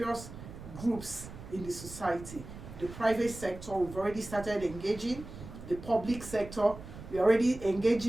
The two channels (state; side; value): noise; right; rumble, 13 dB below the sound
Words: groups in the society. The private sector, we've already started engaging. The public sector, we're already